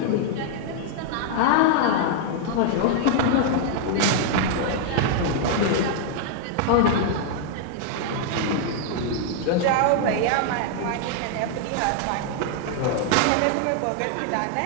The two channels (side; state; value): both; different; correlation 0.00